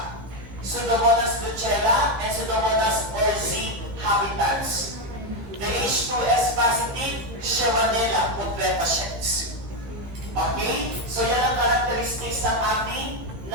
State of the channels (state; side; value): late; left; 15 ms